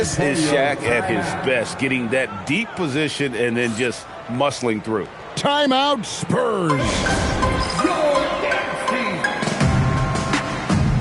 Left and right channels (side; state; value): both; identical; correlation 1.00